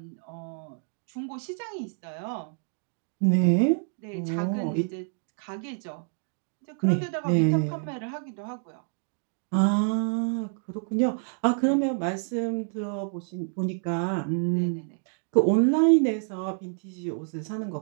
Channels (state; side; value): silent; left; 59 dB below the other